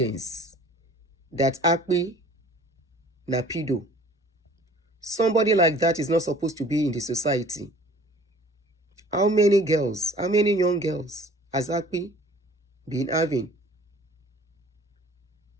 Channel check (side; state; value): both; normal; correlation 0.50